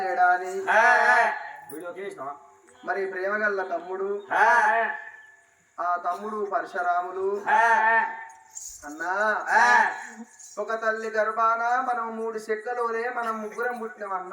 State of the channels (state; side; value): identical; both; correlation 1.00